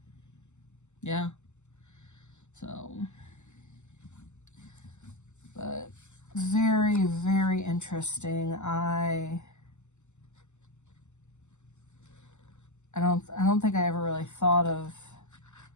yeah. So, but very, very interesting. I don't think I ever really thought of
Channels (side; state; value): right; late; 0.83 ms